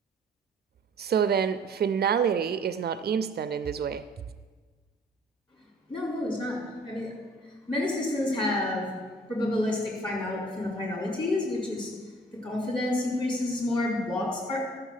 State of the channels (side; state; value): both; normal; correlation 0.54